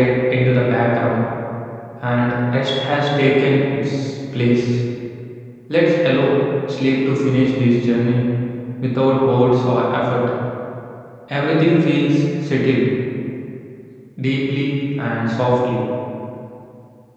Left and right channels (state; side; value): identical; both; correlation 1.00